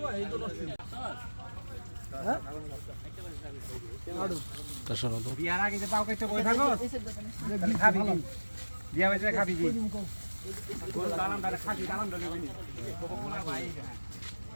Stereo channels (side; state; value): both; inverted; correlation -1.00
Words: এই তো নষ্ট বিয়ার আগে যে পাও কাইতে বই থাকো তাহলে খাবি কি বিয়া হইছে খাবি কি কোন দালাম দারে খাবি দালাম দলে বনি কোলা ভাই